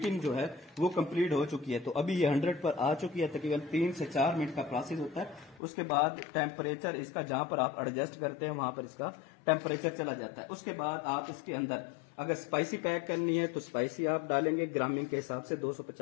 जो है वो कंप्लीट हो चुकी है। तो अभी ये 100 पर आ चुकी है। तकरीबन 3 से 4 मिनट का प्रोसेस होता है। उसके बाद टेम्परेचर इसका जहां पर आप एडजस्ट करते हैं वहां पर इसका टेम्परेचर चला जाता है। उसके बाद आप इसके अंदर अगर स्पाइसी पैक करनी है तो स्पाइसी आप डालेंगे ग्रामिंग के हिसाब से,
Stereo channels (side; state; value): right; drops out; at 5.6 s